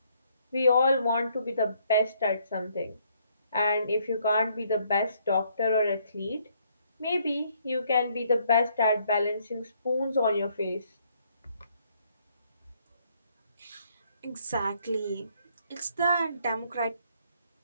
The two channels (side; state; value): both; inverted; correlation -0.69